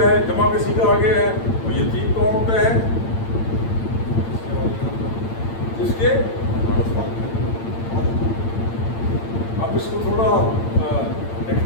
जमा किसी का आगे है, वो यतीम कौन होता है, जिसके, अब इसको थोड़ा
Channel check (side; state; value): right; late; 8.9 ms